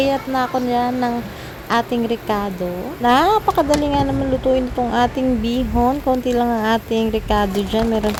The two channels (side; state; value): both; identical; correlation 1.00